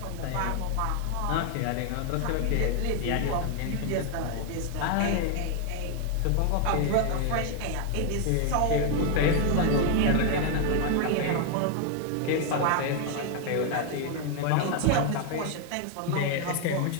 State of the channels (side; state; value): both; different; correlation 0.00